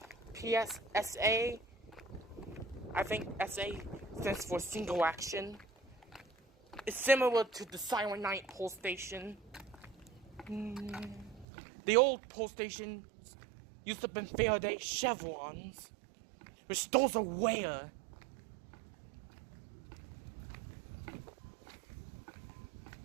PSSA. I think SA stands for single action. It's similar to the Silent Night pole station. The old pole station used to have been Faraday chevrons, which those are rare.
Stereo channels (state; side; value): drops out; left; at 11.5 s